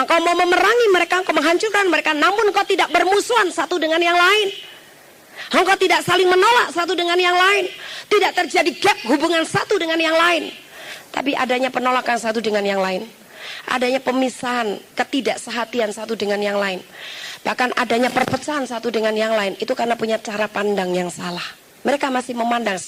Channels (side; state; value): both; identical; correlation 1.00